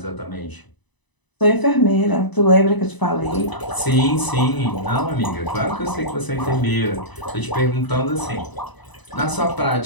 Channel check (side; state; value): right; late; 1.0 ms